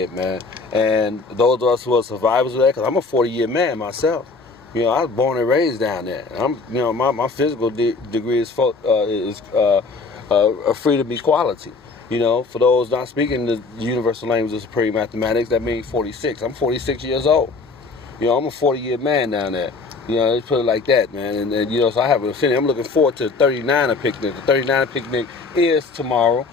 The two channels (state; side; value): quieter; right; 4.1 dB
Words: man. And those of us who are survivors of that, because I'm a 40-year man myself. I was born and raised down there. My physical degree is a freedom equality. For those not speaking the universal language of supreme mathematics, that means 46. I'm 46 years old. You know, I'm a 40-year man down there. You know, let's put it like that, man. And you know, so I have an affinity. I'm looking forward to the 39er picnic. The 39er picnic is tomorrow.